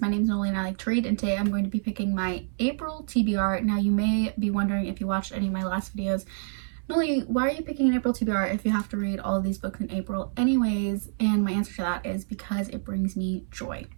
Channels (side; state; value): left; silent; 60 dB below the other